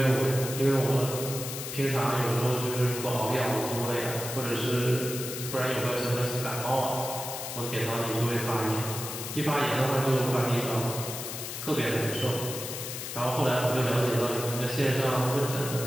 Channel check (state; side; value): noise; left; hiss, 7 dB below the sound